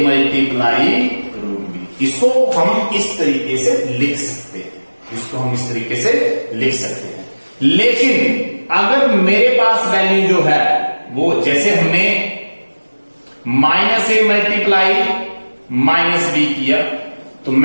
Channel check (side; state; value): both; inverted; correlation -1.00